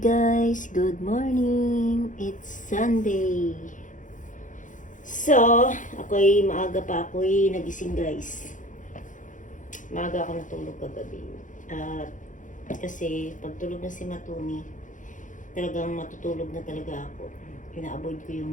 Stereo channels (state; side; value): late; right; 0.37 ms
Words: guys, good morning. It's Sunday. So, maaga pa ako'y nagising guys. Maaga ako natulog kagabi. At kasi pagtulog na si Matuni, talagang matutulog na talaga ako. Ina-avoid ko